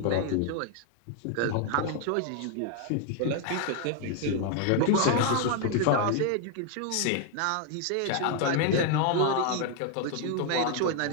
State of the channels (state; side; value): different; both; correlation 0.00